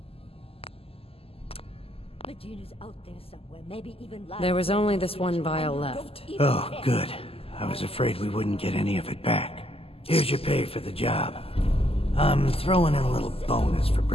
Medina's out there somewhere, maybe even lying. There was only this one vial left. Oh, good. I was afraid we wouldn't get any of it back. Here's your pay for the job. I'm throwing in a little bonus for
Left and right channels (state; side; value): late; right; 0.28 ms